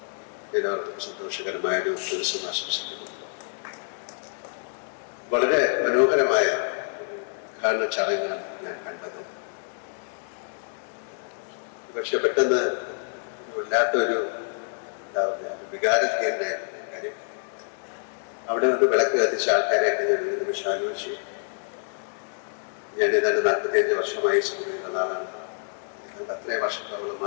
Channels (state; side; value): silent; right; 60 dB below the other